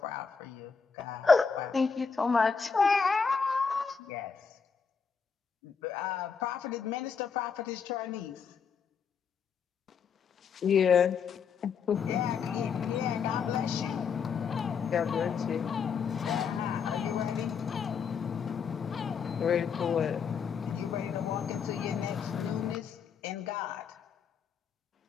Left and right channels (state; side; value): quieter; right; 6.1 dB